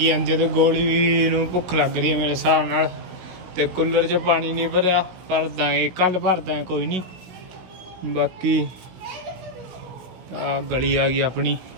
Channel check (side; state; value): left; late; 16 ms